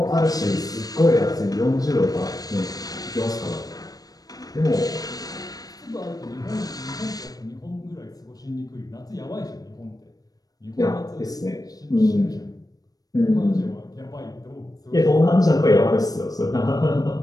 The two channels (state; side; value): late; right; 0.18 ms